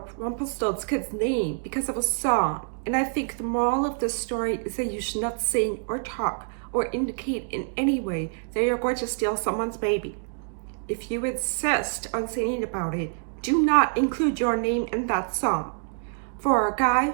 Rumpelstiltskin's name because of a song, and I think the moral of this story is that you should not sing or talk or indicate in any way that you're going to steal someone's baby. If you insist on singing about it, do not include your name in that song. For a guy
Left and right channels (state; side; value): silent; left; digital silence